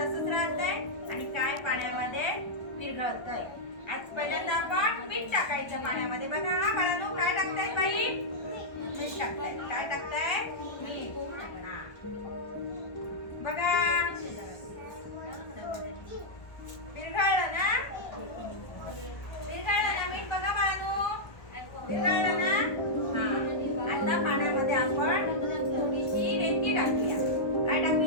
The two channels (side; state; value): right; late; 1.4 ms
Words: राहतंय आणि काय पाण्यामध्ये विरघळतंय. आज पहिल्यांदा आपण मीठ टाकायचं पाण्यामध्ये. बघा हा बाळांनो, काय टाकतायत बाई? मीठ टाकतायत. काय टाकताय? मीठ. बघा विरघळलं ना, विरघळलं ना मीठ. बघा बाळांनो, विरघळलं ना. आता पाण्यामध्ये आपण थोडीशी रेती टाकूया. काय